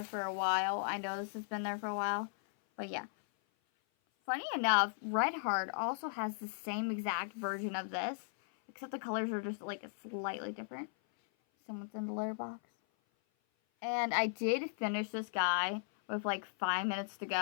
for a while. I know this has been there for a while. But yeah. Funny enough, Red Heart also has the same exact version of this. Except the colors are just like slightly different. Someone's in the litter box. And I did finish this guy with like 5 minutes to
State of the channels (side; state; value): right; silent; 53 dB below the other